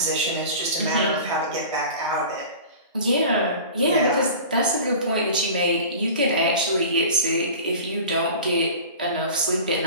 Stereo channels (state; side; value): inverted; both; correlation -0.38